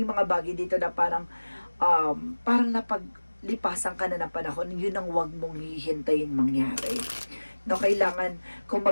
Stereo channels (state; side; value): inverted; both; correlation -1.00